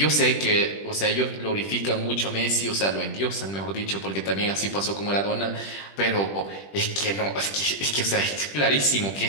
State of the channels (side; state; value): right; late; 20 ms